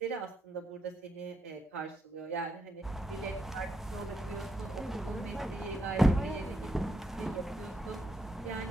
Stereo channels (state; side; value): normal; both; correlation 0.80